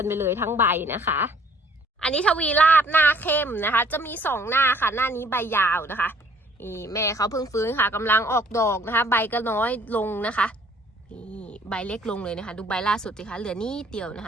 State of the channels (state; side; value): normal; both; correlation 0.59